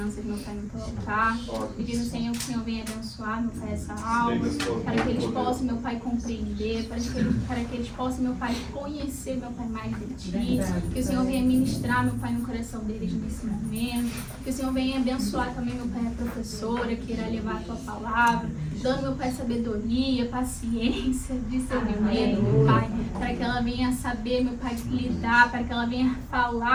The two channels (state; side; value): identical; both; correlation 1.00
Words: meu Pai, no teu altar. Pedindo, Senhor, que o Senhor venha abençoar, meu Pai, essa aula, para que eles possam, meu Pai, compreender, para que eles possam, meu Pai, conhecer, meu Pai, mais de Ti. Que o Senhor venha ministrar, meu Pai, no coração deles nesse momento. Que o Senhor venha abençoar também, meu Pai, a professora que irá levar a Tua palavra, dando, meu Pai, sabedoria, paciência, discernimento, meu Pai, para que ela venha saber, meu Pai, lidar, para que ela venha